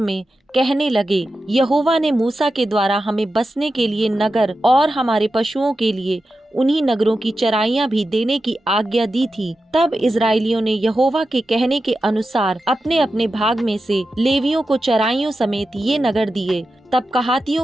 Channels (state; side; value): normal; both; correlation 0.91